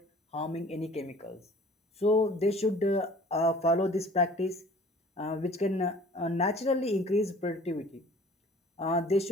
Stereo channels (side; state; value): both; normal; correlation 0.49